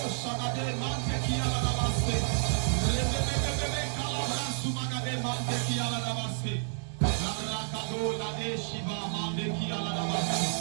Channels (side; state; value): left; silent; digital silence